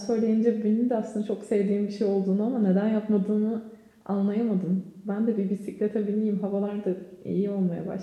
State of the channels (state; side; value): identical; both; correlation 1.00